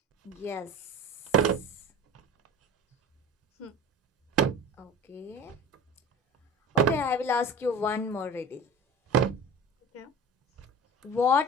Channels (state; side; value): normal; both; correlation 0.36